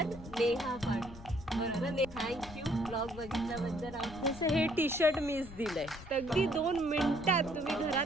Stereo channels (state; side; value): noise; left; rumble, 16 dB below the sound